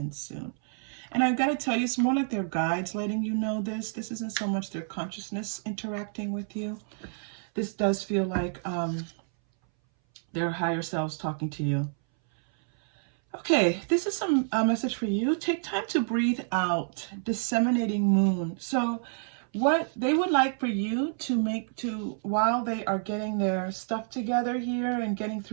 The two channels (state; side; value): silent; left; 59 dB below the other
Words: soon. And I've got to tell you, it's more like their guides letting you know this. This isn't so much their consciousness interacting with you. This does feel like their higher selves talking to you. Okay, this is some message for you. Take time to breathe out. Disseminating moon. So what they would like for you to while they are getting their stuff together here and getting